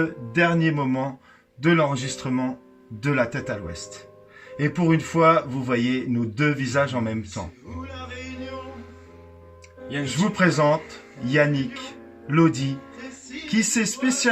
dernier moment de l'enregistrement de La Tête à l'Ouest. Et pour une fois, vous voyez nos deux visages en même temps. Je vous présente Yannick Lodi, qui s'est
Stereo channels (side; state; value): both; identical; correlation 1.00